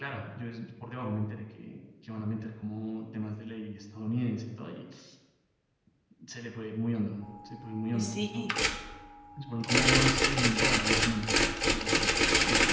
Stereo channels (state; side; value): identical; both; correlation 1.00